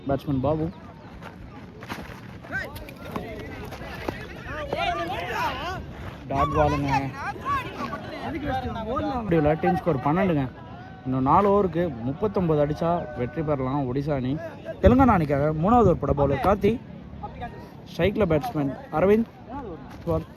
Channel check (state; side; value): identical; both; correlation 1.00